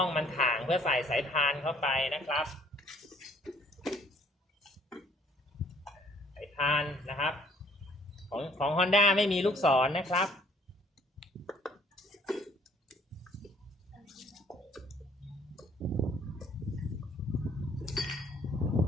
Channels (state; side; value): normal; both; correlation 0.60